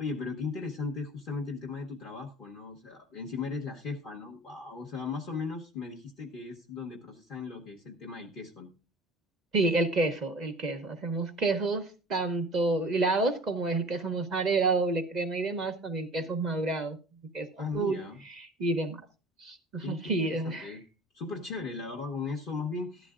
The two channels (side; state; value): both; normal; correlation 0.43